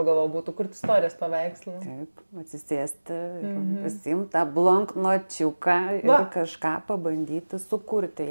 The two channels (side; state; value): both; inverted; correlation -1.00